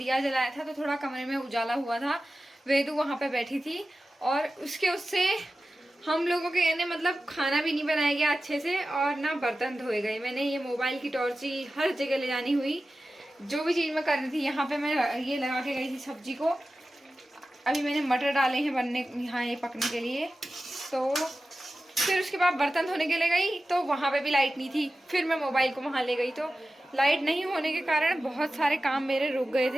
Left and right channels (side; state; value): both; normal; correlation 0.94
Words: जलाया था तो थोड़ा कमरे में उजाला हुआ था। वेदू वहाँ पे बैठी थी और उससे हम लोगों के यानी मतलब खाना भी नहीं बनाया गया अच्छे से और ना बर्तन धोए गए। मैंने ये मोबाइल की टॉर्च ही हर जगह ले जानी हुई, जो भी चीज़ मैं करनी थी। यहाँ पे मैं ये लगा के गई थी सब्जी को। अभी मैंने मटर डाले हैं बनने यहाँ ये पकने के लिए। तो फिर उसके बाद बर्तन धोने के लिए गई तो वहाँ पे भी लाइट नहीं थी। फिर मैं मोबाइल को वहाँ ले गई तो लाइट नहीं होने के कारण बहुत सारे काम मेरे रुक गए